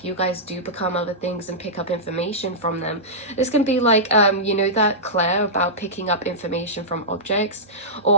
you guys do become other things and pick up information from them. This can be like, you know, that Claire about picking up information from objects,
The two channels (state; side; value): normal; both; correlation -0.13